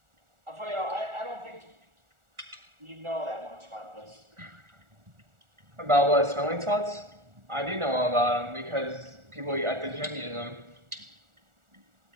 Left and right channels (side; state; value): left; late; 1.4 ms